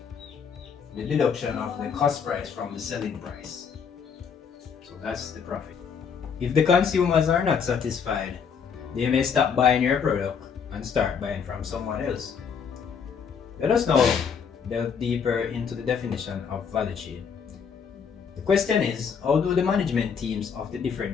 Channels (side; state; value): right; quieter; 6.7 dB